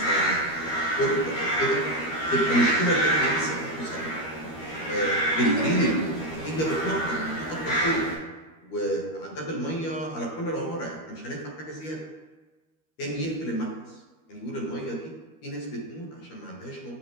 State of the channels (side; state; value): right; late; 13 ms